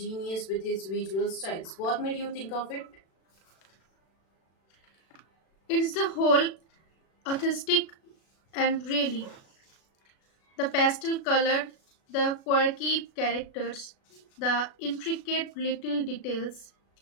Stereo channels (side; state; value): right; late; 36 ms